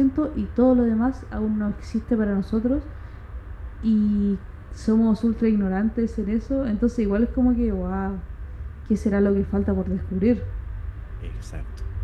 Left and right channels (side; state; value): both; identical; correlation 1.00